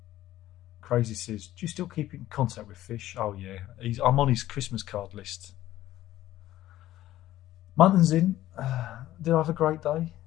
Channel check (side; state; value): right; quieter; 14.4 dB